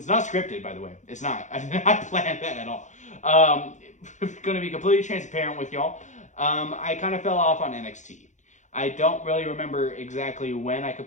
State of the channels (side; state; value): right; late; 0.35 ms